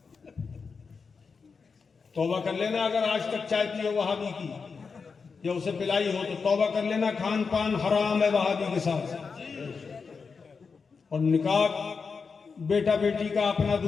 توبہ کر لینا اگر آج تک چائے پی ہو وہابی کی یا اسے پلائی ہو تو توبہ کر لینا. کھان پان حرام ہے وہابی کے ساتھ. اور نکاح بیٹا بیٹی کا اپنا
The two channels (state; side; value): quieter; right; 5.2 dB